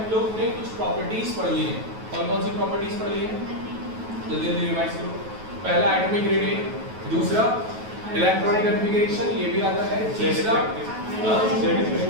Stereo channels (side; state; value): left; late; 9.2 ms